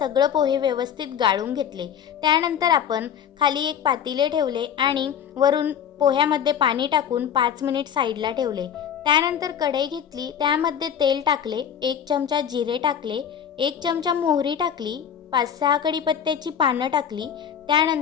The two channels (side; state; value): right; quieter; 8.6 dB